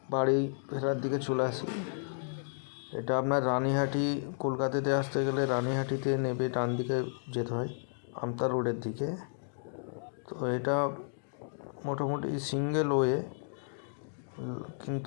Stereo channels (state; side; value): silent; right; digital silence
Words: বাড়ি ফেরার দিকে চলে আসি। এটা আপনার রানীহাটি, কলকাতাতে আসতে গেলে রানীহাটিতে নেমে ডান দিকে যেতে হয় আমতা রোডের দিকে। তো এটা মোটামুটি সিঙ্গেল ওয়ে,